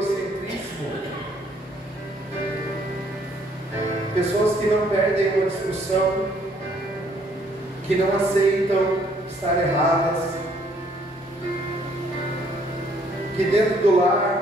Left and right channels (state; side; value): normal; both; correlation 0.65